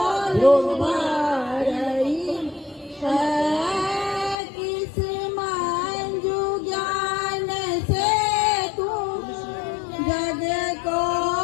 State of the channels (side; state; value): right; drops out; at 4.4 s